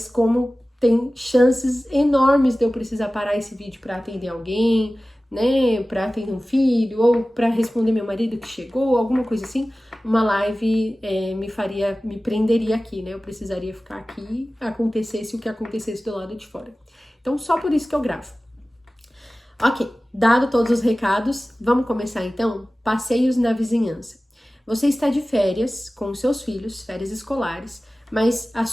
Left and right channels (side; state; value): both; normal; correlation 0.97